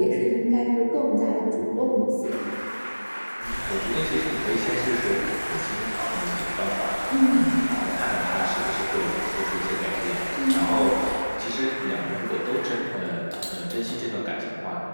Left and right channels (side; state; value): both; inverted; correlation -1.00